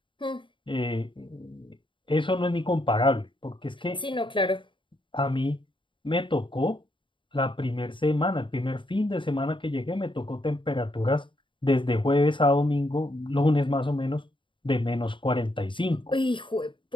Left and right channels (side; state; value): right; late; 0.24 ms